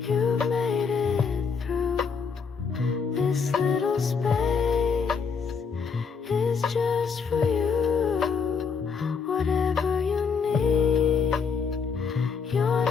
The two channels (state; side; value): quieter; right; 5.7 dB